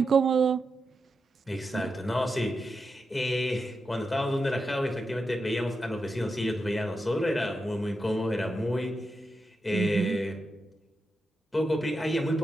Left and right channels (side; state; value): both; normal; correlation 0.87